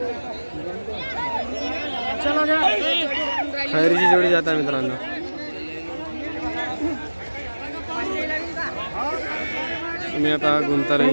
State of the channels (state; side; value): inverted; both; correlation -1.00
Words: खैरीची जोडी जात आहे मित्रांनो. तुम्ही आता